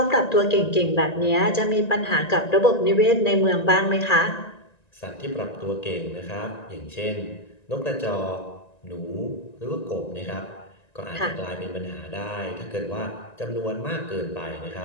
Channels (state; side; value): late; right; 1.9 ms